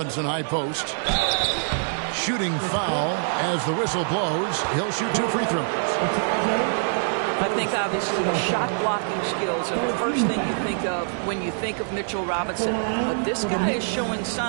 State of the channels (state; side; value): silent; left; 62 dB below the other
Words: high post. Shooting foul as the whistle blows. He'll shoot 2 free throws. I think obviously the shot blocking skills are the first thing you think of when you think of Mitchell Robinson. But this guy is showing